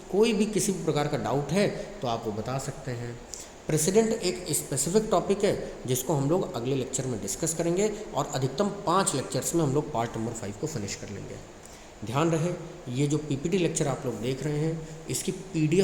कोई भी किसी भी प्रकार का डाउट है तो आप वो बता सकते हैं। प्रेसिडेंट एक स्पेसिफिक टॉपिक है जिसको हम लोग अगले लेक्चर में डिस्कस करेंगे और अधिकतम 5 लेक्चर्स में हम लोग पार्ट नंबर 5 को फिनिश कर लेंगे। ध्यान रहे, ये जो पीपीटी लेक्चर आप लोग देख रहे हैं, इसकी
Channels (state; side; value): identical; both; correlation 1.00